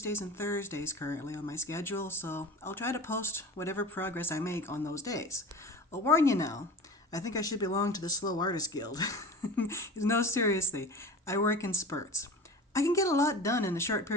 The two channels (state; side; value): normal; both; correlation 0.34